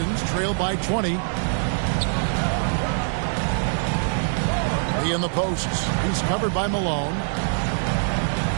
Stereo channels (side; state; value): left; silent; digital silence